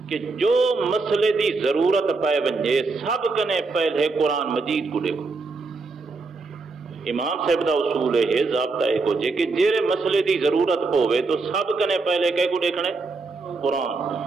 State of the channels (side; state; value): left; quieter; 3.8 dB